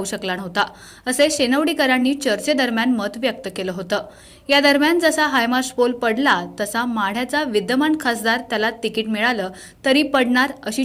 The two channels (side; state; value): both; identical; correlation 1.00